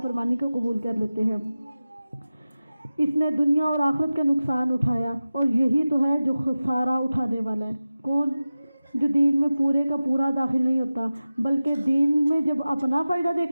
کو قبول کر لیتے ہیں۔ اس نے دنیا اور آخرت کا نقصان اٹھایا، اور یہی تو ہے جو خسارہ اٹھانے والا ہے۔ کون؟ جو دین میں پورے کا پورا داخل نہیں ہوتا، بلکہ دین میں جب اپنا فائدہ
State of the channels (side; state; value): both; inverted; correlation -0.96